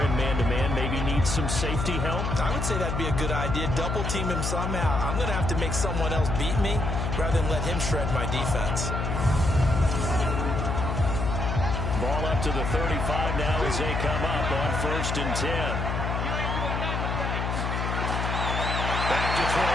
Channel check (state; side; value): noise; left; hum, 1 dB below the sound